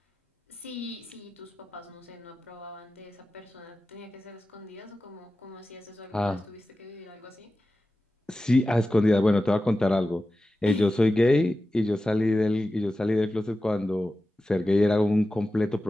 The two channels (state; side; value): normal; both; correlation 0.94